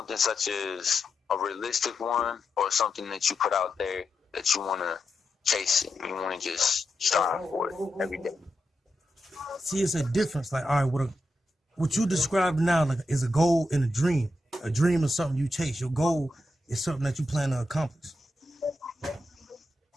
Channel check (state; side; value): normal; both; correlation 0.86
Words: such as a realistic one, or something that you put out there that you want to chase it, you want to just strive for it every day? See, it's a difference. Like, all right, what you described now, like, is a goal and a dream. A dream is something you chase. Your goal is something that you plan to accomplish.